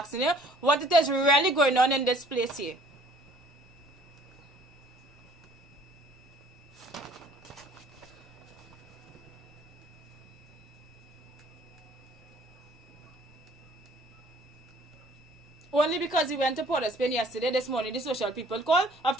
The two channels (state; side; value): normal; both; correlation 0.56